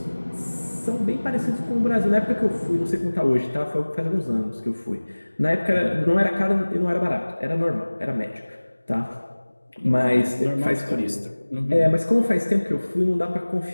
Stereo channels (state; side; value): inverted; both; correlation -1.00